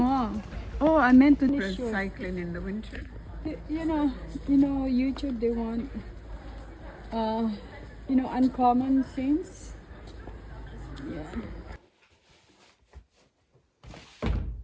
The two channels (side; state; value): both; identical; correlation 1.00